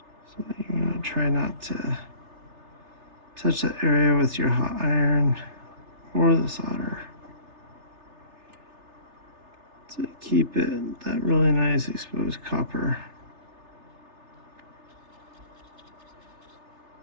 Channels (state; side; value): late; left; 3.3 ms